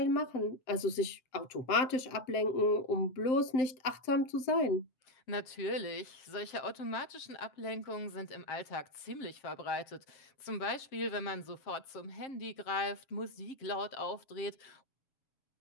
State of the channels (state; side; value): late; right; 7.7 ms